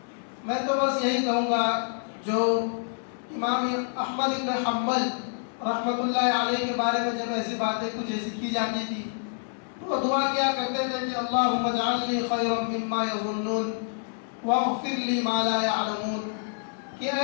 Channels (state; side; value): silent; right; 60 dB below the other